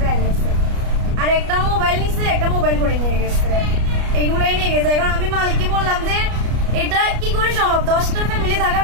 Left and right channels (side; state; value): left; late; 33 ms